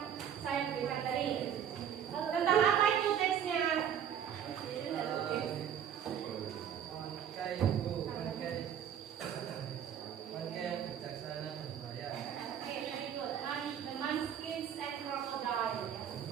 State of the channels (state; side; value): quieter; left; 9.0 dB